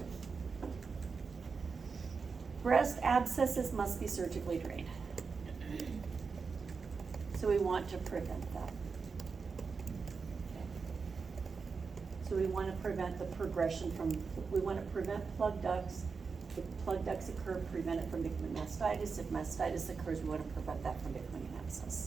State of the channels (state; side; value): quieter; left; 5.1 dB